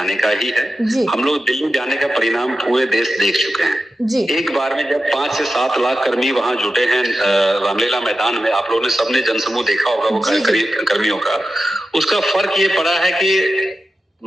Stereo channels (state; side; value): normal; both; correlation 0.91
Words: का ही है। हम लोग दिल्ली जाने का परिणाम पूरे देश देख चुके हैं। एक बार में जब 5 से 7 लाख कर्मी वहां जुटे हैं रामलीला मैदान में, आप लोगों ने सबने जनसमूह देखा होगा वो कर्मियों का, उसका फर्क ये पड़ा है कि